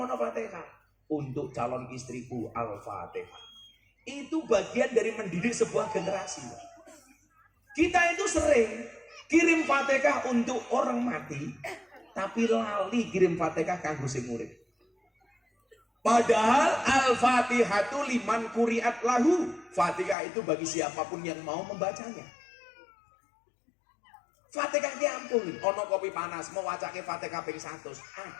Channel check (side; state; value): right; drops out; at 20.2 s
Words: Fatihah untuk calon istriku Al-Fatihah. Itu bagian dari mendidik sebuah generasi. Kita itu sering kirim Fatihah untuk orang mati, tapi lali kirim Fatihah kanggo sing urip. Padahal Al-Fatihatu liman kuriat lahu. Fatihah itu bagi siapapun yang mau membacanya. Fatihah ki ampun, ono kopi panas mau wacake Fatihah ping 100,